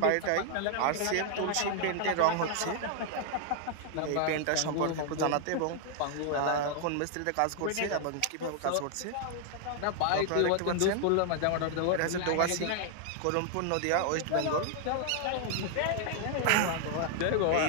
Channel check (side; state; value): both; different; correlation 0.00